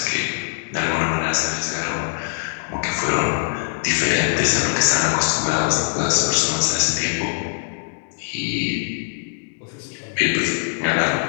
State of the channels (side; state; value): right; silent; digital silence